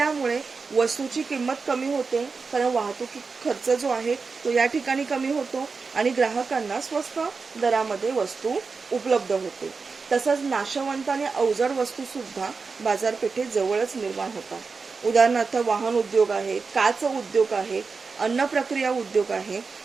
वस्तूची किंमत कमी होते, कारण वाहतूक खर्च जो आहे तो या ठिकाणी कमी होतो आणि ग्राहकांना स्वस्त दरामध्ये वस्तू उपलब्ध होते. तसंच नाशवंत आणि अवजड वस्तू सुद्धा बाजारपेठेत जवळच निर्माण होतात. उदाहरणार्थ वाहन उद्योग आहे, काच उद्योग आहे, अन्न प्रक्रिया उद्योग आहे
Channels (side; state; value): left; quieter; 4.7 dB